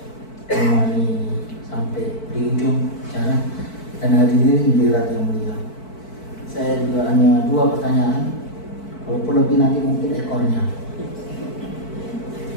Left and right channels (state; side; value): late; right; 4.5 ms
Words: kembali sampai di ujung acara dan hadirin hadirat yang mulia. Saya juga hanya 2 pertanyaan. Walaupun lebih nanti mungkin ekornya.